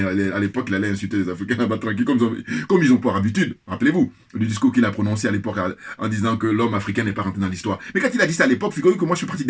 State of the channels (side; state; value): both; identical; correlation 1.00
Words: à l'époque, il allait insulter les Africains là-bas tranquille, comme ils ont pour habitude. Rappelez-vous, le discours qu'il a prononcé à l'époque en disant que l'homme africain n'est pas rentré dans l'histoire. Mais quand il a dit ça à l'époque, figurez-vous que moi, je suis parti